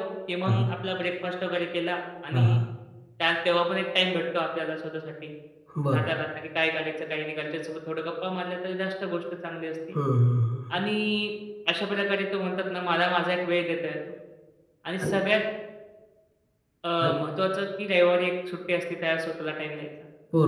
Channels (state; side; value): identical; both; correlation 1.00